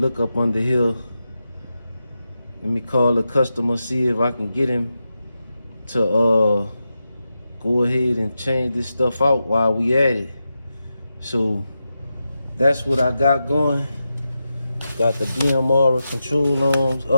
up under here. Let me call the customer, see if I can get him to go ahead and change this stuff out while we at it. So that's what I got going. Got the BMR control arms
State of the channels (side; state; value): both; inverted; correlation -0.89